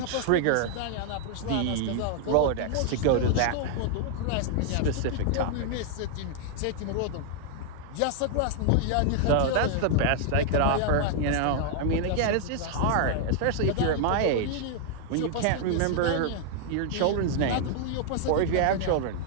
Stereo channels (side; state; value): both; different; correlation 0.00